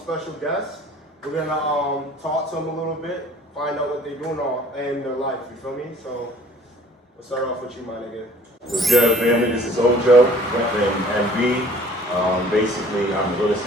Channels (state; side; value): normal; both; correlation 0.53